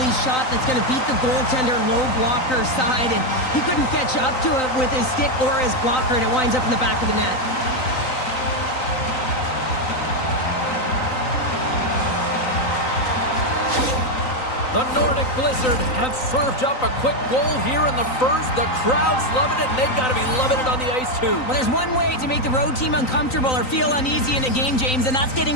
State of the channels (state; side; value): late; right; 3.9 ms